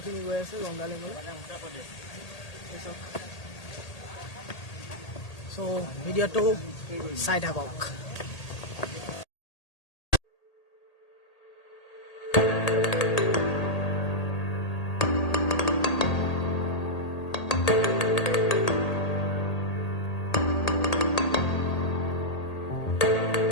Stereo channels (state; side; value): late; right; 1.8 ms